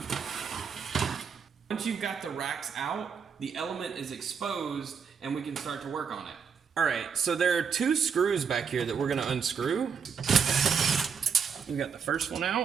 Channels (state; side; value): quieter; left; 6.5 dB